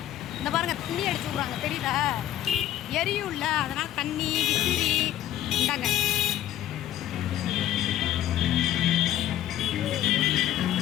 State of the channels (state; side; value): quieter; right; 12.7 dB